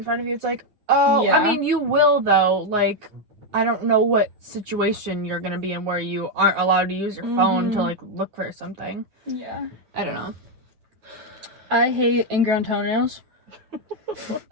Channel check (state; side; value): late; left; 9.5 ms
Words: front of you. It's like, oh, Yeah. I mean, you will, though. Like, I don't know what situation you're gonna be in where you aren't allowed to use your phone to, like, look for something. Yeah. I don't know. I hate ingrown toenails.